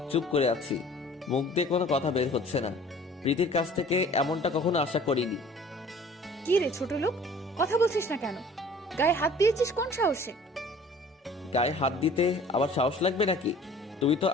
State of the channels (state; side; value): normal; both; correlation 0.49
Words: চুপ করে আছি, মুখ দিয়ে কোনো কথা বের হচ্ছে না। প্রীতির কাছ থেকে এমনটা কখনো আশা করিনি। কি রে ছোট লোক, কথা বলছিস না কেন? গায়ে হাত দিয়েছিস কোন সাহসে? গায়ে হাত দিতে আবার সাহস লাগবে নাকি? তুমি তো